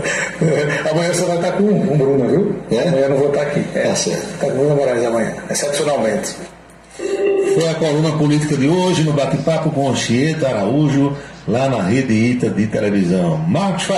Amanhã você vai estar com o Bruno, viu? Amanhã eu não vou estar aqui. Tá certo. Está com o Bruno Moraes amanhã, excepcionalmente. Foi a coluna política de hoje no bate-papo com Anchieta Araújo, lá na Rede ITA de televisão. Marcos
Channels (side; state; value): both; identical; correlation 1.00